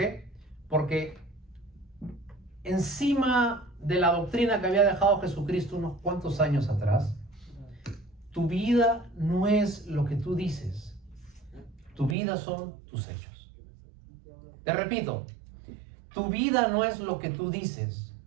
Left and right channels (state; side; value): drops out; left; at 12.2 s